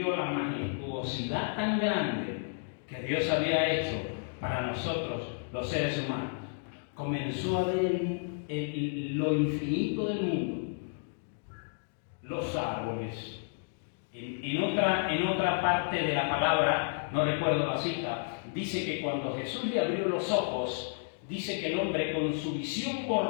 la majestuosidad tan grande que Dios había hecho para nosotros, los seres humanos. Comenzó a ver lo infinito del mundo. Los árboles. En otra parte de la palabra, no recuerdo la cita, dice que cuando Jesús le abrió los ojos, dice que el hombre con su visión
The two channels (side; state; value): right; silent; digital silence